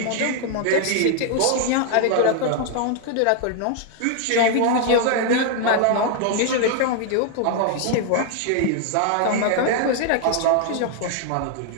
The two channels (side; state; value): both; different; correlation 0.00